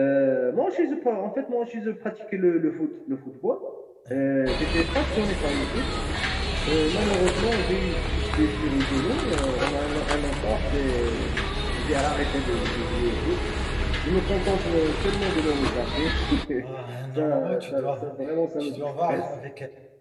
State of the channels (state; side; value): identical; both; correlation 1.00